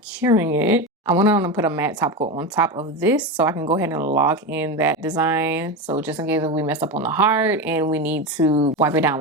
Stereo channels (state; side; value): normal; both; correlation 0.18